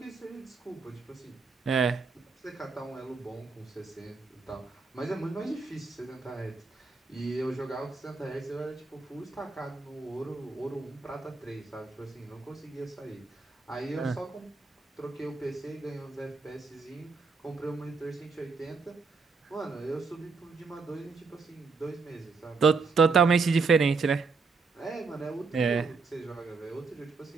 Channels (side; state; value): left; quieter; 4.5 dB